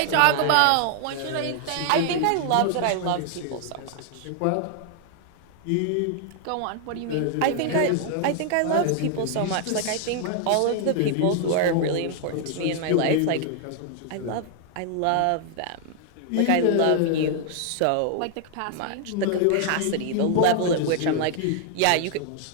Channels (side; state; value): both; different; correlation 0.00